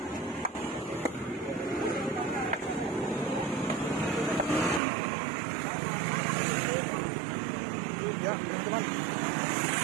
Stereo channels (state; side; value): drops out; left; at 4.8 s